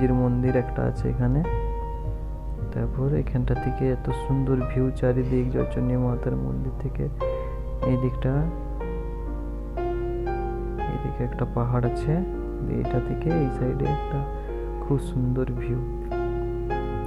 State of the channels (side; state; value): both; identical; correlation 1.00